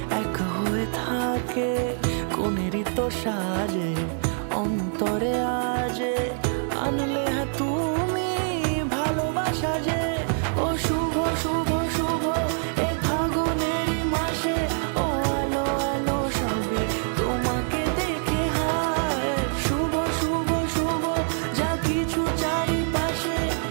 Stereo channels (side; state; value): left; silent; 62 dB below the other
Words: এক হয়ে থাকে। কোনেরই তো সাজে অন্তরে আজে, আনলে হ্যাঁ তুমি ভালোবাসা যে। ও শুভ শুভ শুভ এ ফাগুনেরই মাসে, ও আলো আলো সবই তোমাকে দেখে হায়। শুভ শুভ শুভ যা কিছু চারিপাশে,